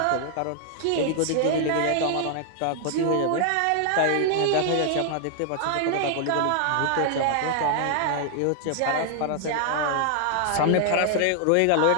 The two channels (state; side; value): different; both; correlation 0.00